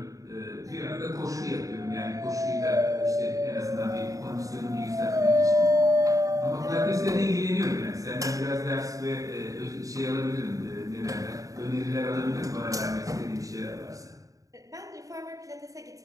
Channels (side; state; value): left; late; 0.16 ms